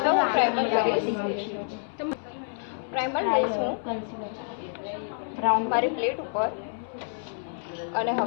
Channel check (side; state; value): right; silent; 59 dB below the other